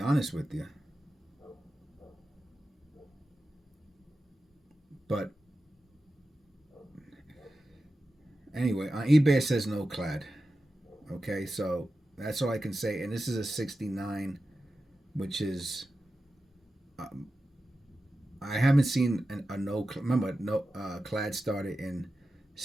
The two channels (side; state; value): both; normal; correlation 0.92